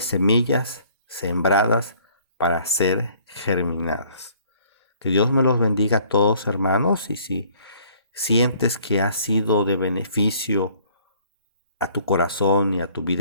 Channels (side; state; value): both; inverted; correlation -0.58